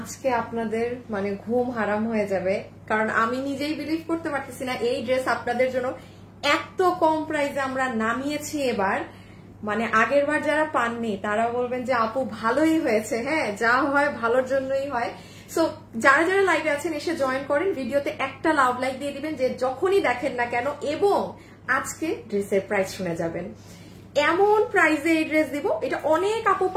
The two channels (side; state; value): both; identical; correlation 1.00